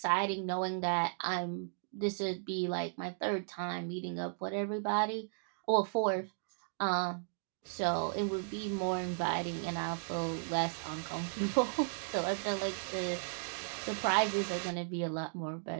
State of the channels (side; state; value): left; silent; digital silence